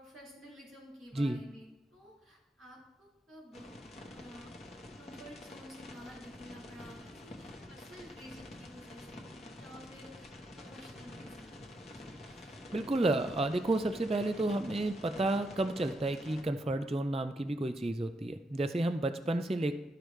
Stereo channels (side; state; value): both; normal; correlation 0.81